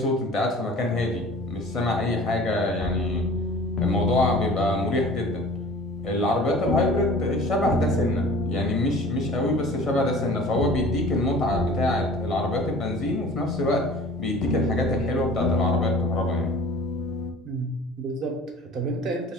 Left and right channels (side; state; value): both; normal; correlation 0.44